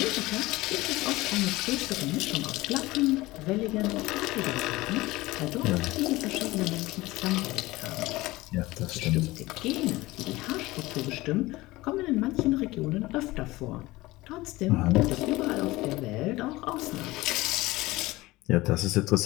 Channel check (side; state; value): right; quieter; 19.7 dB